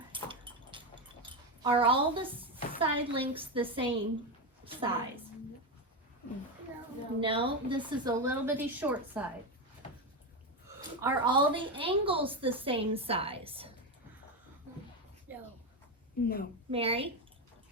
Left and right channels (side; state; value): both; normal; correlation 0.12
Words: are all the side lengths the same size? No, this is a little bitty short side. Are all the angles the same size? No. Mary?